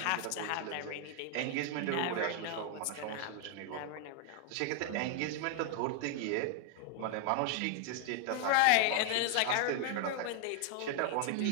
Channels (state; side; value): different; both; correlation 0.00